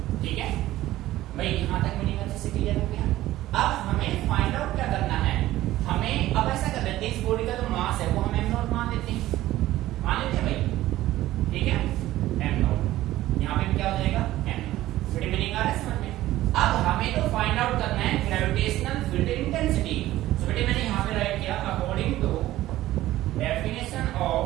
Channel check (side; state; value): left; quieter; 15.4 dB